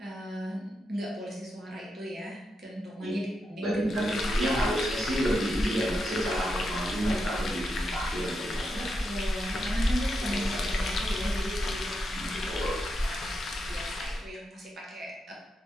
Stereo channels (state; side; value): normal; both; correlation 0.85